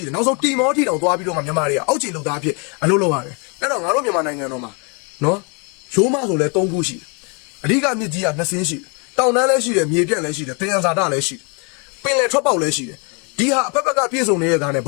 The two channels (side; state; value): right; quieter; 34.5 dB